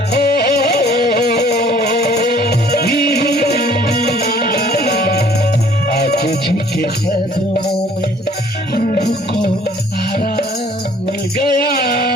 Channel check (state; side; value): normal; both; correlation 0.56